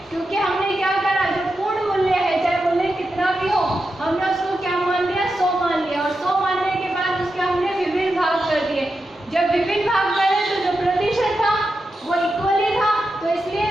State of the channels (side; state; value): both; normal; correlation 0.89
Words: क्योंकि हमने क्या करा, जो पूर्ण मूल्य है, चाहे मूल्य कितना भी हो, हमने उसको क्या मान लिया, 100 मान लिया, और 100 मानने के बाद उसके हमने विभिन्न भाग कर दिए। जब विभिन्न भाग करे तो जो प्रतिशत था वो इक्वली था, तो इसलिए